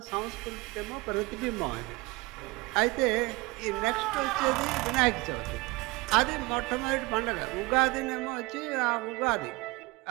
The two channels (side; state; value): left; quieter; 23.8 dB